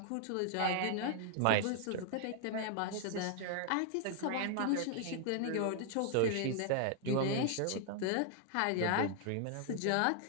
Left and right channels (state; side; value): different; both; correlation 0.00